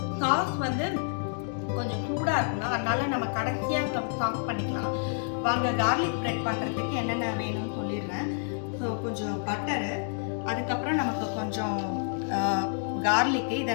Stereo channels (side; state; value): right; silent; digital silence